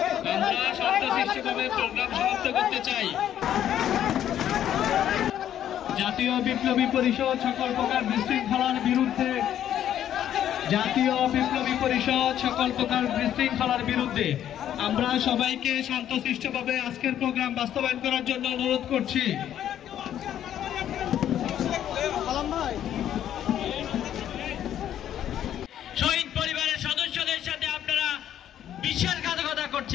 আমরা শান্তশিষ্টভাবে প্রোগ্রাম সমাপ্ত করতে চাই। জাতীয় বিপ্লবী পরিষদ সকল প্রকার বিশৃঙ্খলার বিরুদ্ধে, জাতীয় বিপ্লবী পরিষদ সকল প্রকার বিশৃঙ্খলার বিরুদ্ধে আমরা সবাইকে শান্তশিষ্টভাবে আজকের প্রোগ্রাম বাস্তবায়ন করার জন্য অনুরোধ করছি। শহীদ পরিবারের সদস্যদের সাথে আপনারা বিশ্বাসঘাতকতা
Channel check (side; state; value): right; quieter; 10.8 dB